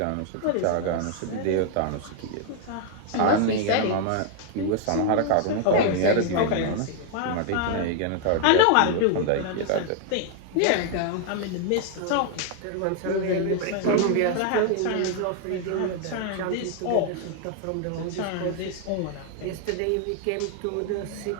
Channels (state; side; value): different; both; correlation 0.00